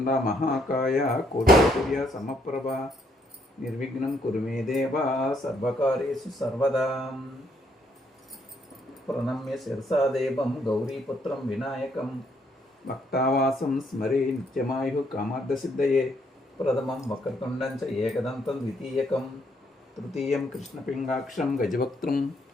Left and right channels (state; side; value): normal; both; correlation 0.71